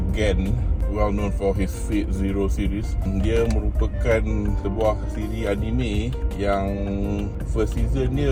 Gen, well known for his Fate Zero series. Dia merupakan sebuah siri anime yang first season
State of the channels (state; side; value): identical; both; correlation 1.00